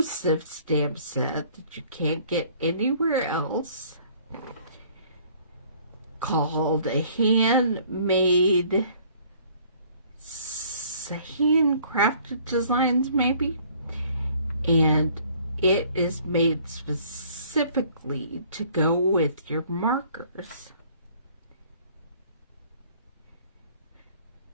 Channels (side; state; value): both; inverted; correlation -0.57